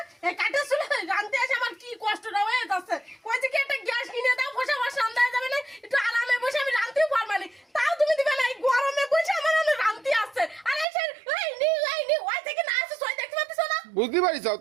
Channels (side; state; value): left; drops out; at 10.9 s